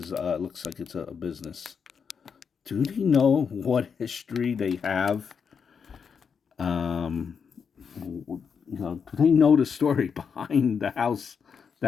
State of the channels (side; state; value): right; quieter; 6.4 dB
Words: looks like it's a business. Do they know what history they have? Do they know the story behind the house